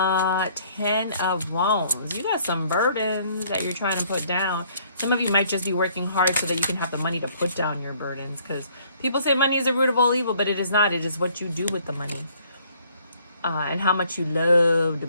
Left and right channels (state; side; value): inverted; both; correlation -0.62